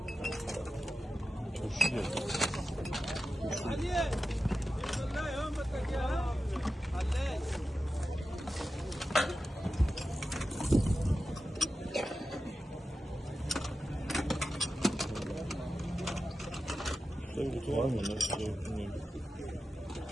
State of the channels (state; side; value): normal; both; correlation 0.92